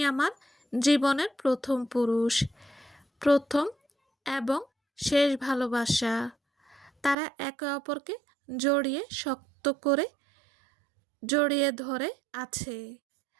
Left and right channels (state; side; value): drops out; left; at 7.2 s